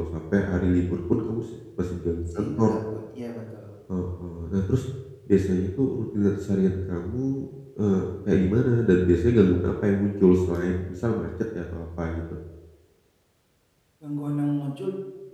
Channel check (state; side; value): identical; both; correlation 1.00